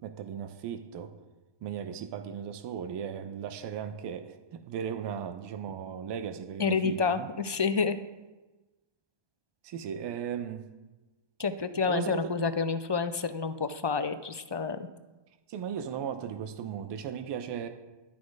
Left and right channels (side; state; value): left; late; 1.2 ms